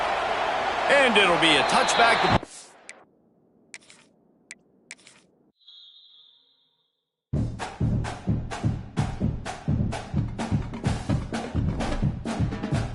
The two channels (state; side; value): identical; both; correlation 1.00